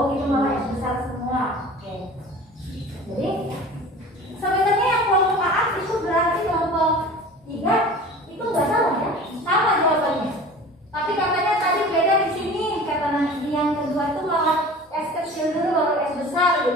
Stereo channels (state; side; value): normal; both; correlation 0.40